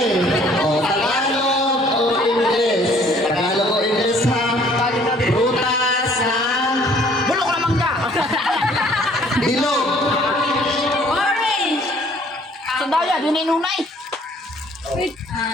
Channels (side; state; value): both; normal; correlation 0.58